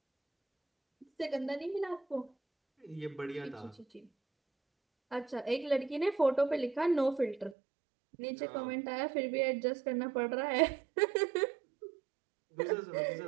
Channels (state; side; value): drops out; left; at 7.6 s